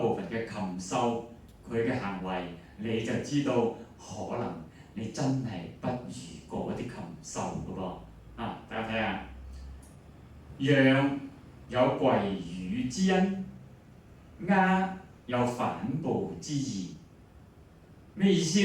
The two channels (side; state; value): both; identical; correlation 1.00